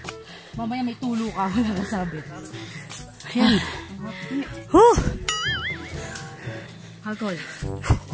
Mamaya may tulo ka, wala ka sabi. Ayan. Huh! Hagol.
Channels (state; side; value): identical; both; correlation 1.00